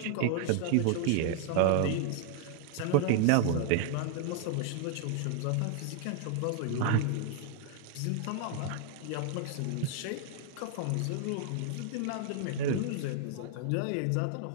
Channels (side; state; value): both; different; correlation 0.00